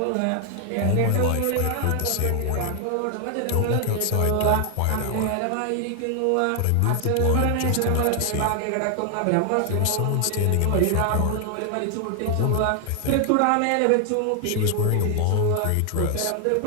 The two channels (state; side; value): different; both; correlation 0.00